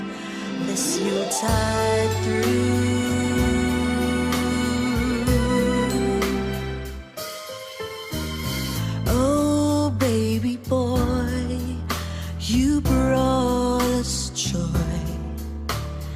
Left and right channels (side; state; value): both; identical; correlation 1.00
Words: this Yuletide through. You brought us joy